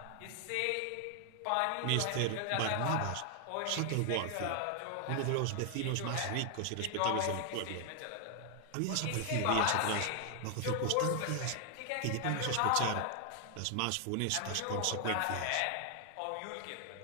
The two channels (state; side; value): different; both; correlation 0.00